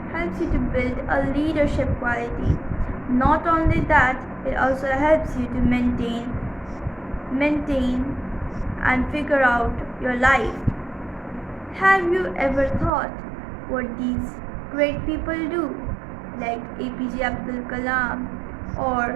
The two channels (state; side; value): drops out; left; at 12.9 s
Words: helps you to build a leadership quality. Not only that, it also helps you to maintain and figure out your life. Have you ever thought what these great people do, like APJ Abdul Kalam